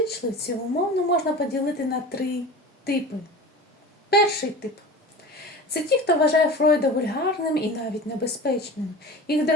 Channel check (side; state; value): both; normal; correlation 0.35